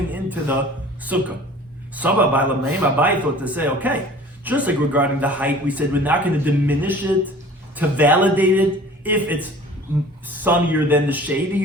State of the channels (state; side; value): normal; both; correlation 0.45